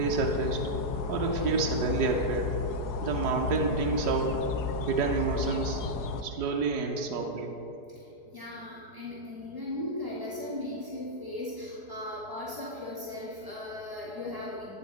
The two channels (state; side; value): late; left; 4.8 ms